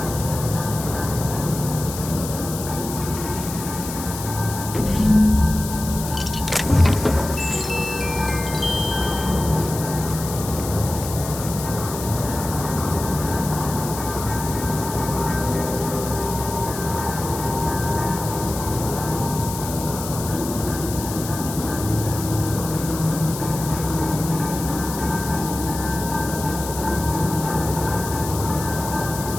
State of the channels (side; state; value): left; noise; hiss, 9 dB below the sound